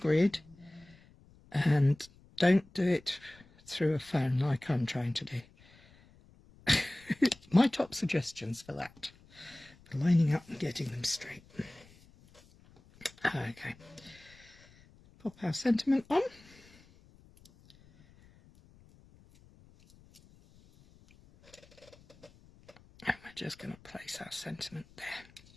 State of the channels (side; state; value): left; noise; rumble, 26 dB below the sound